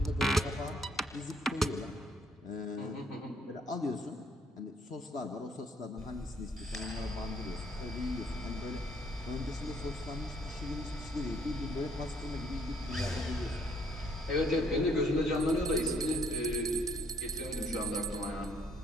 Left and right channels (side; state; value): both; normal; correlation 0.65